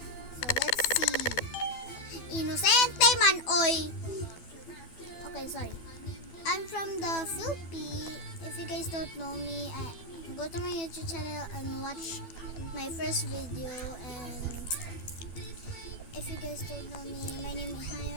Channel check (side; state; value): right; late; 12 ms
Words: So let's see. Inosente man, oy! Okay, sorry. I'm from the Philippines. If you guys don't know me, go to my YouTube channel and watch my first video. And if you guys don't know me, my name